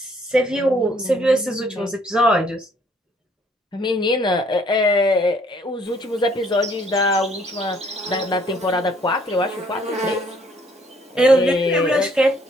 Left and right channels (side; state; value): both; normal; correlation 0.63